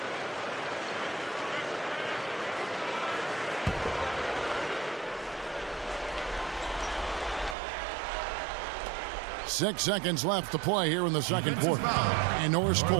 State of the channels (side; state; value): left; drops out; at 7.6 s